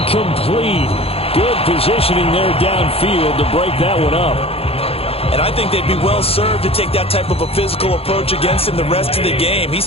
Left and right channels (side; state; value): right; late; 0.28 ms